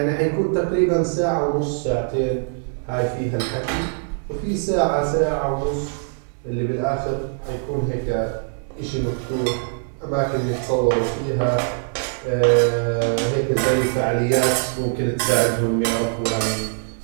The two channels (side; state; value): left; silent; 64 dB below the other